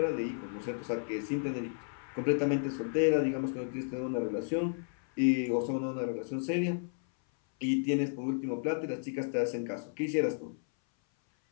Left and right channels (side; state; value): right; silent; 56 dB below the other